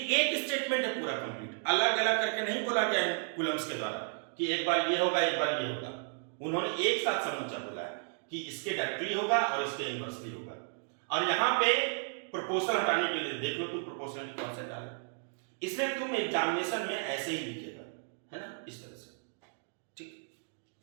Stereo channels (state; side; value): silent; left; 56 dB below the other